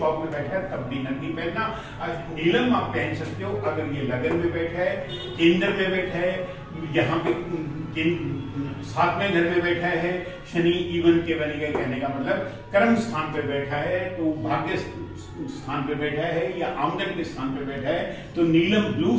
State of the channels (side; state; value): both; identical; correlation 1.00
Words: में बैठा है तब भी नग नहीं पहनना। नीलम आप पहन सकते हो अगर ये लगन में बैठा है, केंद्र में बैठा है, यहाँ पे 7वें घर में बैठा है। शनि इवन के बने गए, कहने का मतलब कर्म स्थान पे बैठा है, तो भाग्य स्थान पे बैठा है या आमदन के स्थान पे बैठा है, तो नीलम ब्लू